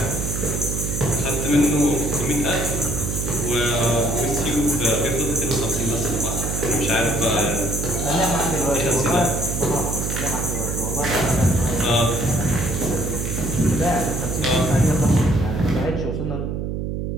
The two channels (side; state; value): right; noise; hum, 3 dB below the sound